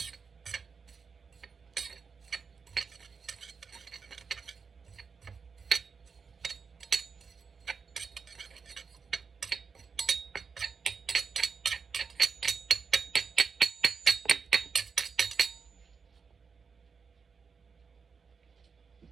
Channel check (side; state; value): left; quieter; 5.4 dB